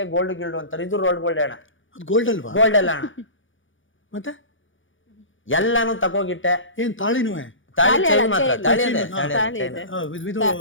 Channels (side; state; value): right; late; 0.57 ms